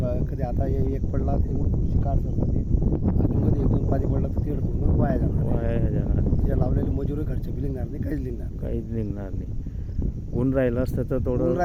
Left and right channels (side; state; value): both; identical; correlation 1.00